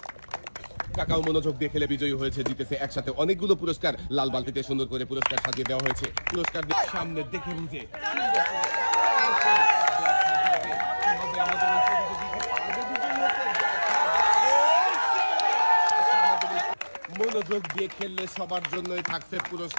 কাকাও মনোযোগ দিয়ে খেলে বিজয়ী হয়েছে, জিতেছে একসাথে অনেকগুলো পুরস্কার। লাল বালতিতে সুন্দর করে পুরস্কার সাজিয়ে দেওয়া হয়েছে। পুরস্কার সামনে দেখে বুঝে মনোযোগ দিয়ে খেললে সবার জন্যই থাকছে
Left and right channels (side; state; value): both; inverted; correlation -1.00